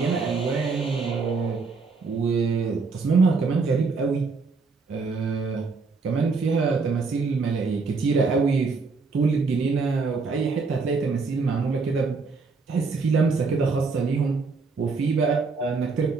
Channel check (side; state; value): left; quieter; 4.4 dB